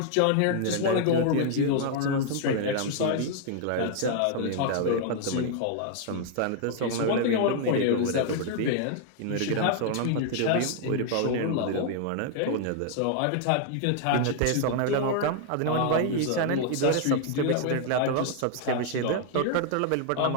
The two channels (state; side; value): different; both; correlation 0.00